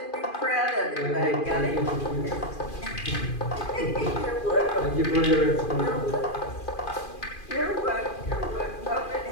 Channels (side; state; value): right; late; 2.4 ms